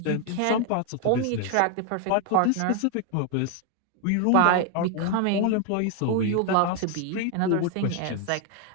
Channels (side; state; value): both; different; correlation 0.01